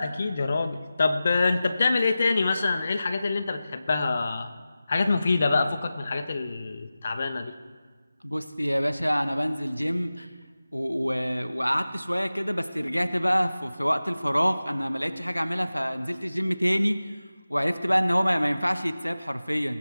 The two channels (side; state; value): both; inverted; correlation -0.95